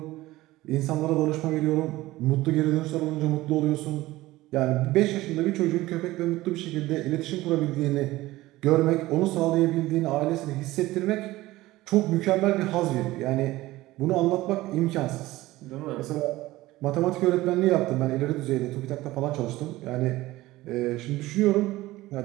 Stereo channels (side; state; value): left; quieter; 17.8 dB